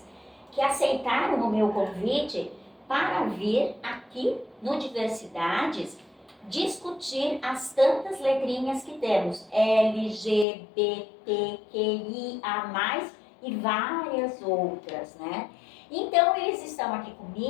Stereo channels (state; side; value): drops out; right; at 10.5 s